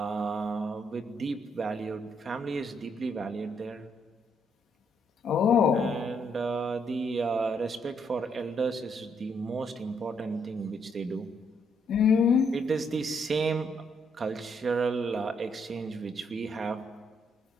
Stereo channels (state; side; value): normal; both; correlation 0.73